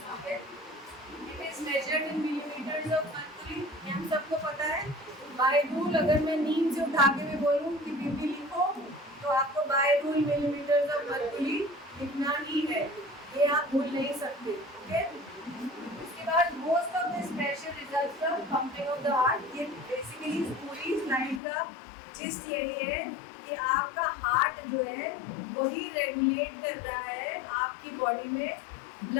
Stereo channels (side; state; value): right; drops out; at 21.4 s